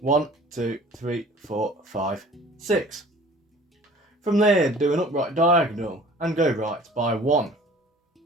1, 2, 3, 4, 5, 6. From there, do an upright diagonal and go right by 1.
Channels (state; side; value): normal; both; correlation 0.48